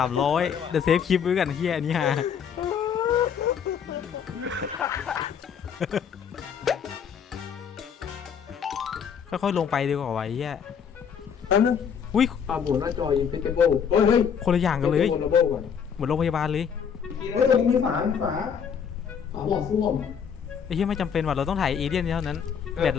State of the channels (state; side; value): quieter; right; 7.3 dB